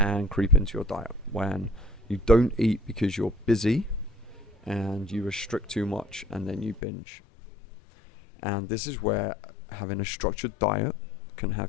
creep into your diet when you don't eat because you're busy and you restrict too much and then you binge. And this is where having a structured diet can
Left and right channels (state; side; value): drops out; right; at 6.8 s